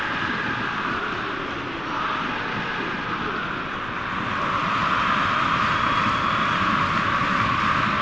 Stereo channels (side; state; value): left; noise; rumble, 16 dB below the sound